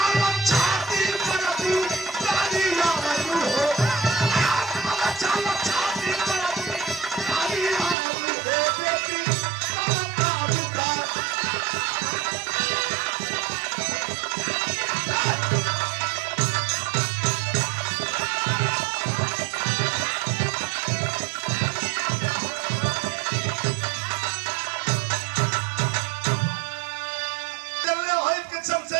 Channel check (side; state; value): left; drops out; at 8.0 s